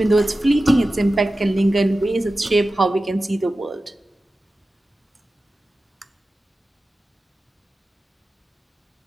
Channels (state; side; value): normal; both; correlation 0.94